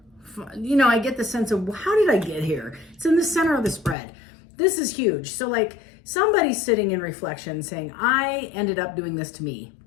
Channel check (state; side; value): drops out; right; at 4.0 s